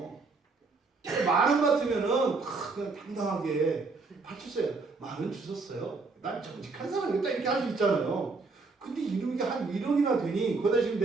10,000원 같으면은 그냥 당당하게 바쳤어요. 10,000원 주셨어요. 난 정직한 사람이다 이렇게 할 수 있잖아요. 근데 이게 한 1억이나 되니 거기다 지금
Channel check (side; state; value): left; quieter; 4.0 dB